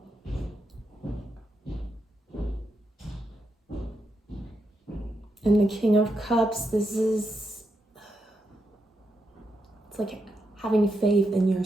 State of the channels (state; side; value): normal; both; correlation 0.84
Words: And the King of Cups, this is, it's like having faith in your